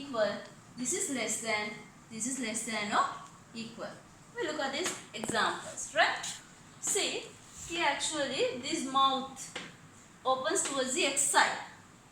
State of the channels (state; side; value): identical; both; correlation 1.00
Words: This is less than. This is less than or equal. We look at these examples. Right? See, here actually this mouth opens towards the x side.